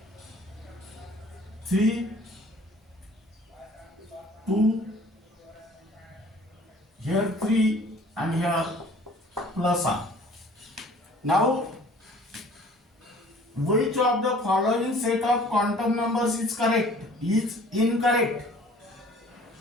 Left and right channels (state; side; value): normal; both; correlation 0.51